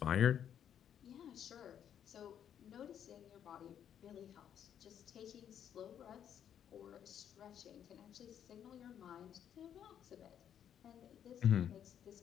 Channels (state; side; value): quieter; right; 9.3 dB